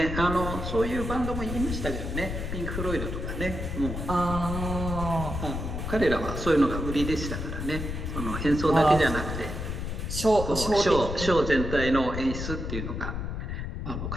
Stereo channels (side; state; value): left; noise; rumble, 4 dB below the sound